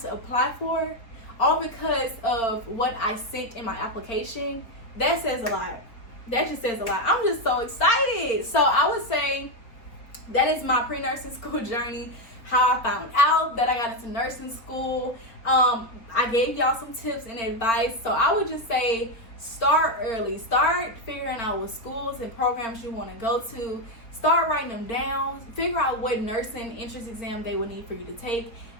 to apply for, all because of what I sent in my application, that says a lot. That just says a lot. I'm just so excited. So I would say that is my pre-nursing school journey, how I found out that I got into nursing school. I gave y'all some tips and advice. So I would just say, start early. Start figuring out what schools and programs you want to go to. Start writing them down. Figure out what nursing entrance exam they will need for you to take.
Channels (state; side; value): late; right; 4.1 ms